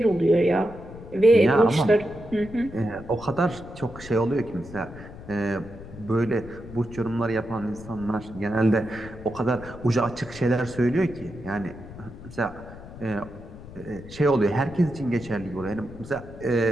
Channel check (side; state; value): left; noise; rumble, 15 dB below the sound